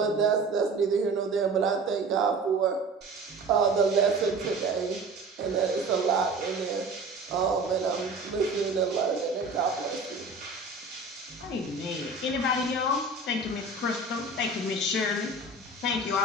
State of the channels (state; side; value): quieter; left; 3.1 dB